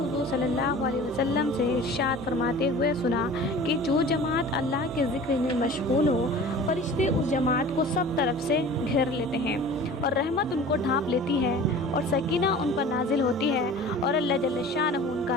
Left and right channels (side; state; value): both; normal; correlation 0.41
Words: صلی اللہ علیہ وسلم سے ارشاد فرماتے ہوئے سنا کہ جو جماعت اللہ کے ذکر میں مشغول ہو، فرشتے اس جماعت کو سب طرف سے گھیر لیتے ہیں اور رحمت ان کو ڈھانپ لیتی ہے اور سکینہ ان پر نازل ہوتی ہے اور اللہ جل شانہ ان